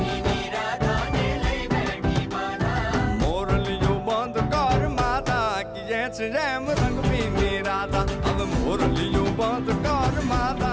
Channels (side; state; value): both; identical; correlation 1.00